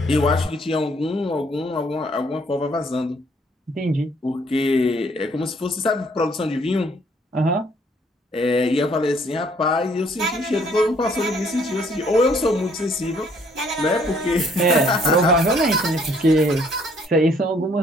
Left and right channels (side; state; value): both; normal; correlation 0.63